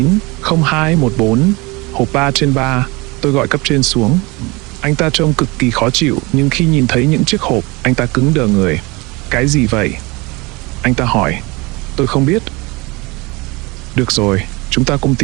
0214. Hộp 3 trên 3. Tôi gọi cấp trên xuống. Anh ta trông cực kỳ khó chịu, nhưng khi nhìn thấy những chiếc hộp, anh ta cứng đờ người. Cái gì vậy? Anh ta hỏi. Tôi không biết. Được rồi, chúng ta cùng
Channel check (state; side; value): quieter; left; 25.1 dB